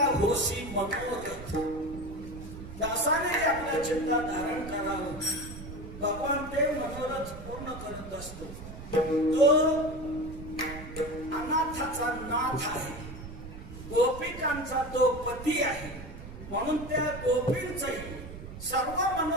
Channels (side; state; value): right; noise; rumble, 12 dB below the sound